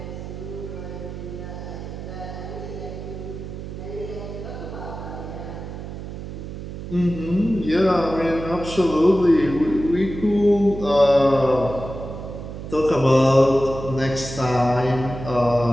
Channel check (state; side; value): noise; right; hum, 9 dB below the sound